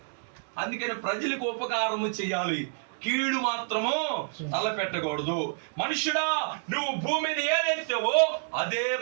అందుకని ప్రజలకు ఉపకారము చేయాలి, కీడు మాత్రము తలపెట్టకూడదు. మనుషుడా, నువ్వు భూమి మీద ఏదైతేవో అదే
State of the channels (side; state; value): left; silent; digital silence